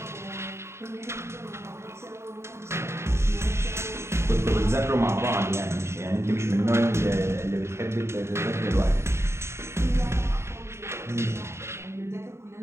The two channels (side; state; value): left; late; 0.13 ms